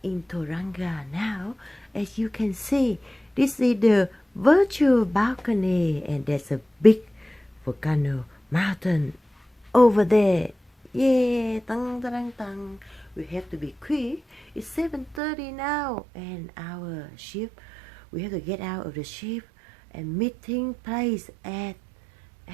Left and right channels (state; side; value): drops out; left; at 15.2 s